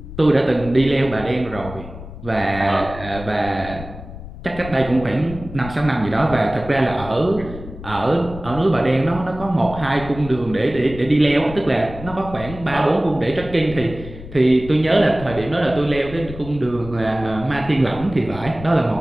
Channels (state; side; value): noise; left; rumble, 13 dB below the sound